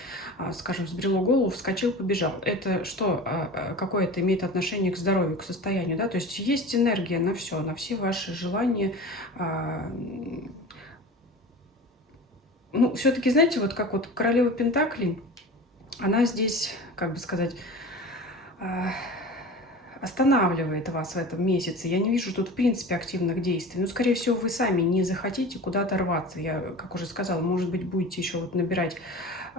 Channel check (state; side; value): normal; both; correlation 0.35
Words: скажем, взбрело голову, вскочил, побежал. Это что, какое это имеет отношение к здоровью, к состоянию, да, то есть есть энергия на все ваши желания, Ну, все-таки, знаете, вот как вот королева Пентаклей, она здесь, как бы сказать, а, останавливает вас в этом месяце. Я не вижу тут, в принципе, активных действий. Ну, скорее всего, вы сами не захотите куда-то рваться. Я, как уже сказала, может быть, будете еще вот набирать